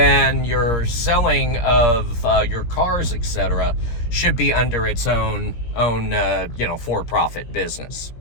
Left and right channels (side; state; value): right; late; 17 ms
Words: your selling of your cars, etc., should be under its own for-profit business.